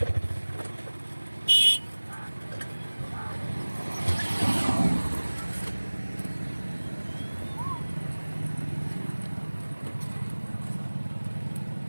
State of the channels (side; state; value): both; inverted; correlation -1.00